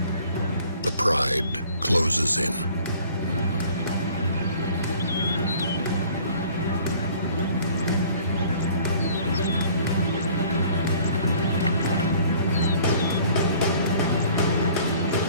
The pride closes in.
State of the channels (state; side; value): inverted; both; correlation -0.53